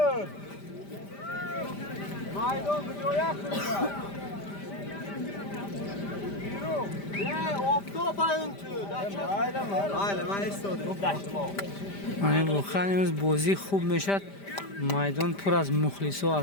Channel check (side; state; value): right; late; 5.0 ms